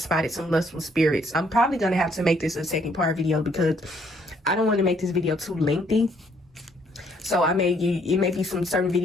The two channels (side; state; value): both; normal; correlation 0.67